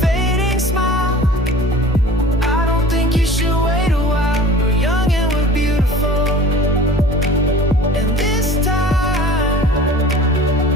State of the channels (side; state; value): both; normal; correlation 0.43